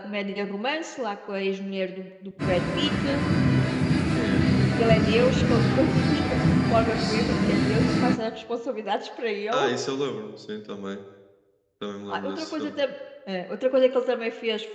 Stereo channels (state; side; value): identical; both; correlation 1.00